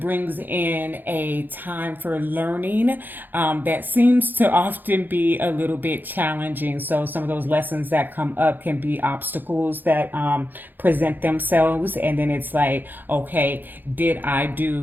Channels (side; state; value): left; late; 0.090 ms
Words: in a time for learning that seems to often be a little bit challenging. So some of those lessons that come up can be obstacles that present themselves, and then it's like, okay, did I